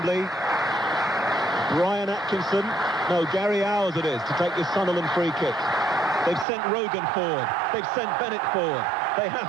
Brian Atkinson, no, Gary Owers it is, to take this Sunderland free kick. They've sent Rogan forward. They've sent Bennett forward. They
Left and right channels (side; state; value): left; drops out; at 6.5 s